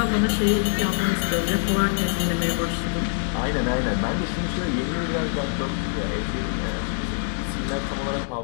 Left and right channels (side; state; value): right; silent; digital silence